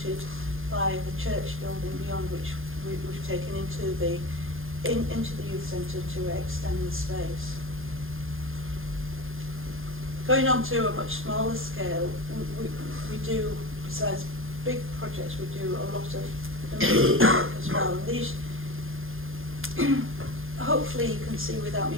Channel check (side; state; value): left; late; 0.60 ms